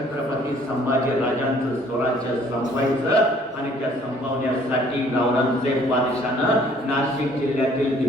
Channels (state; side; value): normal; both; correlation 0.58